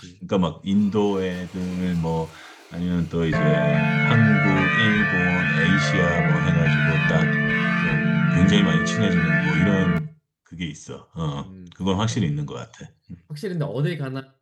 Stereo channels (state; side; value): identical; both; correlation 1.00